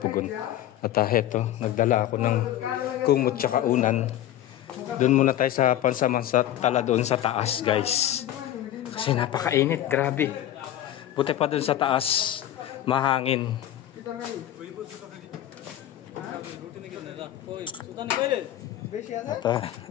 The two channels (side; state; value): right; quieter; 12.4 dB